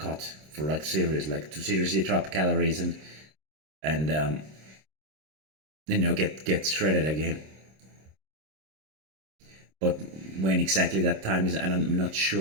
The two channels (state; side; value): late; left; 26 ms